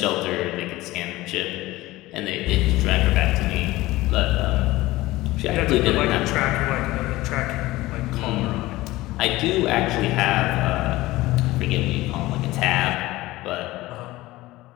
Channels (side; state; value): right; quieter; 18.3 dB